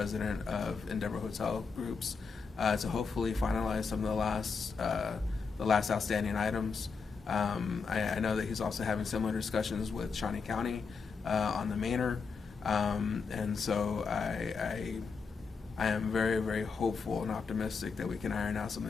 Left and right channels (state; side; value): quieter; right; 5.2 dB